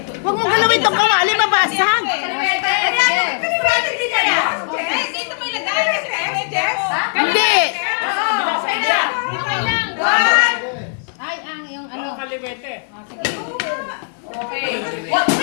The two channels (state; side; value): silent; right; digital silence